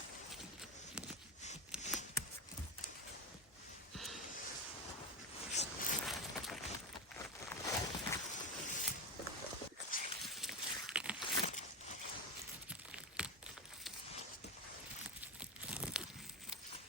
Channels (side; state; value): both; normal; correlation 0.19